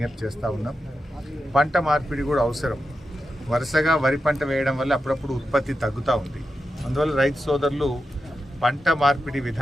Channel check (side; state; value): both; normal; correlation 0.89